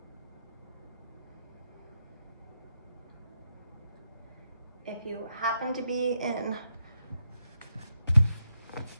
If you happen to be in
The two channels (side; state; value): both; inverted; correlation -0.84